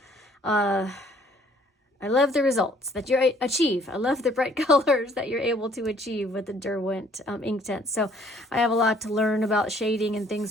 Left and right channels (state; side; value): normal; both; correlation 0.60